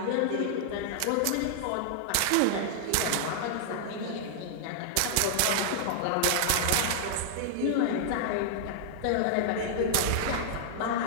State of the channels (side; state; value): both; different; correlation -0.01